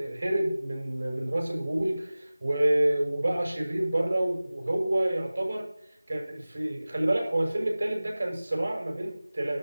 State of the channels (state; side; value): inverted; both; correlation -0.98